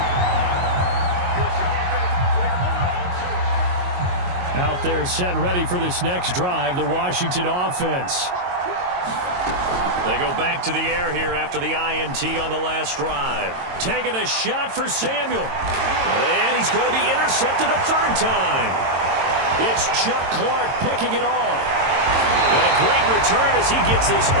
Out there set and ready for this next drive, the Washington offense. They go back to the air here after the INT on the last drive. Taking a shot for Samuel. And he's going to be intercepted a third time. It's Chuck Clark picking it off. And a great return as he gets this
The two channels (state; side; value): late; left; 22 ms